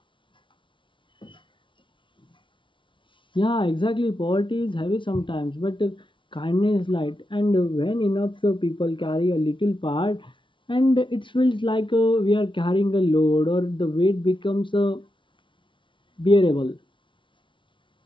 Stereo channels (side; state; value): right; late; 0.24 ms